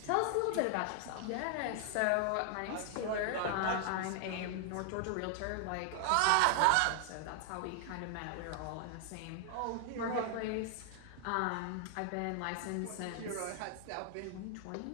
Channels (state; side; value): different; both; correlation 0.00